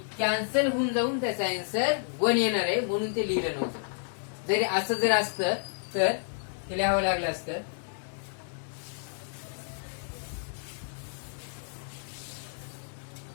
कॅन्सल होऊन जाऊन त्याचा आन्सर 1 येणार आहे, म्हणून ते लिहिलं नव्हतं. जरी असं जर असतं तर ते लिहावं लागलं असतं.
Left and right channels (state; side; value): silent; right; digital silence